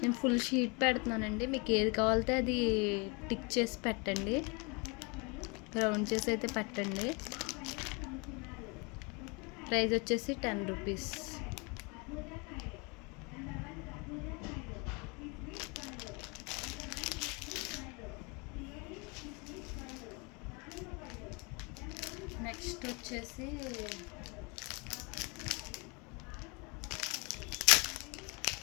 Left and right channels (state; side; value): quieter; right; 30.6 dB